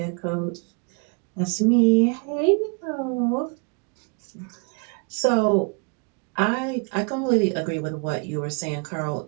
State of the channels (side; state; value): left; quieter; 37.0 dB